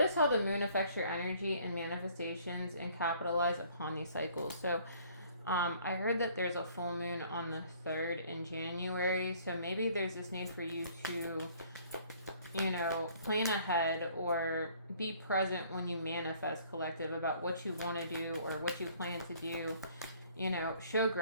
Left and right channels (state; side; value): inverted; both; correlation -0.58